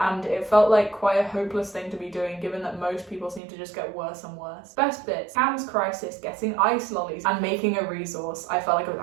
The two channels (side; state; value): left; drops out; at 3.4 s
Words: it felt like quite a hopeless thing to be doing given that most people seem to just get worse and worse. Best bits: Cam's crisis, getting ice lollies, and making a resource. I felt like it was